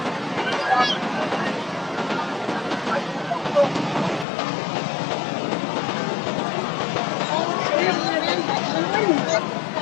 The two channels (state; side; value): drops out; right; at 4.2 s